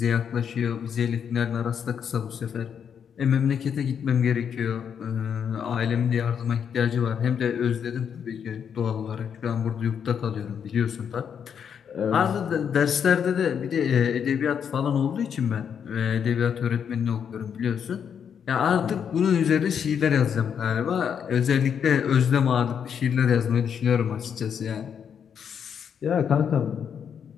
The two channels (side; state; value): right; quieter; 7.7 dB